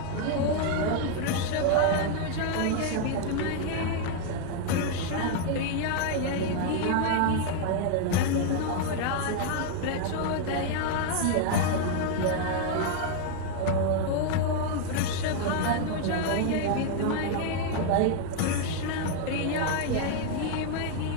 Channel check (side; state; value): both; different; correlation 0.00